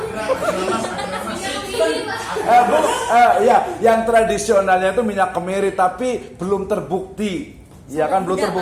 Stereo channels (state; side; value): identical; both; correlation 1.00